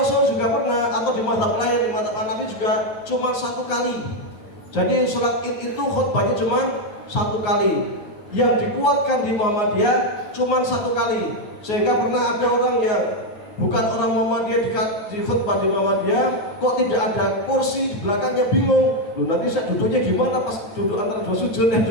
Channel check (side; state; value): right; late; 9.5 ms